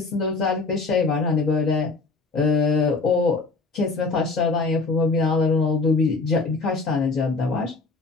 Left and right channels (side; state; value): right; quieter; 3.9 dB